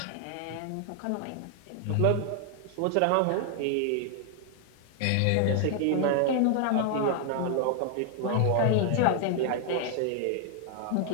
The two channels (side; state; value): both; different; correlation 0.00